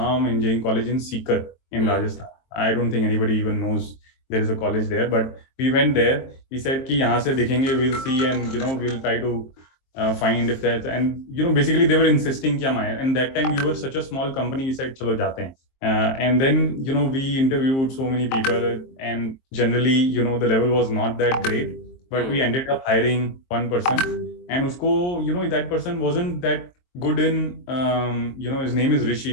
engineering college in Sikar in Rajasthan. I don't think anybody even knows there is a college there, but we went there. We said कि यहाँ से देखेंगे, we'll see, and we'll try to find if that, and basically they were insisting कि हम आए, and that time we were such a small company. We said चलो जाते हैं. And then we interviewed so many people, and generally the level was not that great, but we ended up hiring one person, and usko that person wasn't that good in his name is Rishi.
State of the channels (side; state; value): right; late; 23 ms